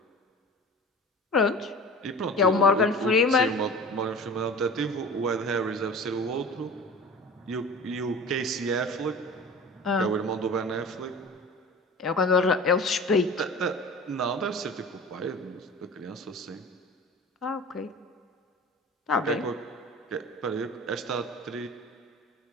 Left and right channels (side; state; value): both; normal; correlation 0.38